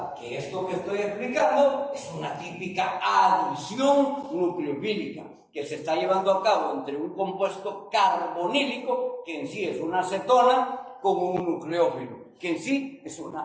Que esto que estoy explicando es una típica adición nucleofílica que se está llevando a cabo entre un compuesto carbonílico, que en sí es una acetona, con un nucleófilo, que en sí es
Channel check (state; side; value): identical; both; correlation 1.00